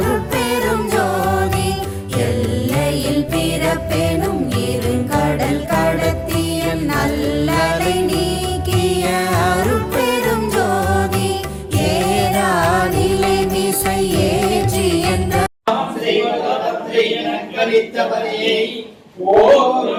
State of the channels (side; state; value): both; identical; correlation 1.00